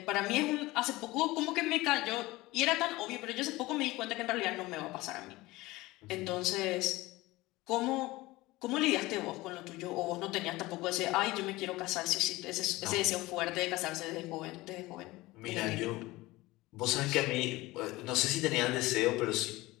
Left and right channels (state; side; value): quieter; right; 19.8 dB